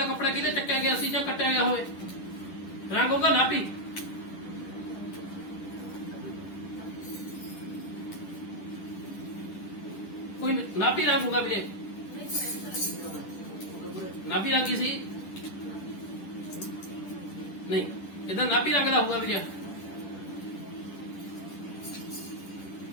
ਕੱਪੜਾ ਕਿਹਦੇ ਚੱਕਿਆ ਗਿਆ ਸੀ ਜਾਂ ਕੱਟਿਆ ਗਿਆ ਹੋਵੇ? ਰੰਗ ਹੋਗਾ ਨਾਭੀ। ਕੋਈ ਨਾਭੀ ਰੰਗ ਹੋਗਾ ਵੀਰੇ, ਨਾਭੀ ਰੰਗ ਹੀ ਸੀ ਨਹੀਂ, ਇਹਦਾ ਨਾਭੀ ਰੰਗ ਦਾ ਹੋਊਗਾ ਵੀਰੇ।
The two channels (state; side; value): late; right; 10 ms